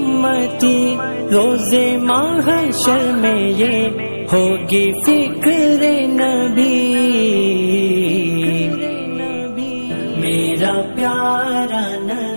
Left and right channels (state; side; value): inverted; both; correlation -1.00